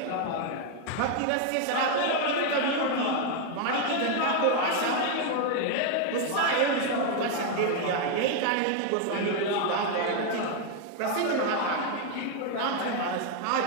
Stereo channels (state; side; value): different; both; correlation 0.01